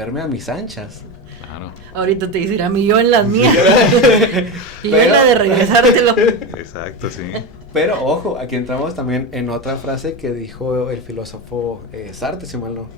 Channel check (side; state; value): both; normal; correlation 0.18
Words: a mis anchas. Claro. Ahorita te dirá mi yo en las mías. Y yo en la de regresártelo. Exacto, sí. Pero ojo, aquí entramos también en otra frase que dijo el filósofo Sartre, si mal